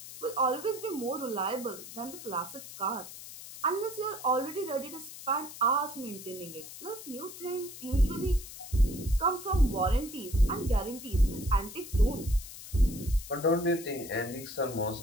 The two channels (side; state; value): left; noise; hiss, 13 dB below the sound